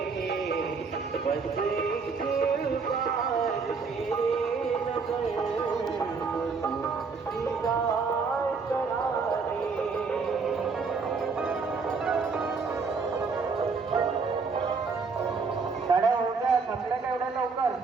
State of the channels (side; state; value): left; quieter; 4.8 dB